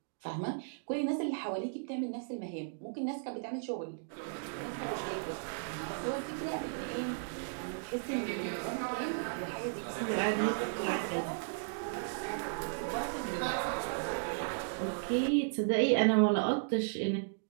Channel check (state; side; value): silent; left; digital silence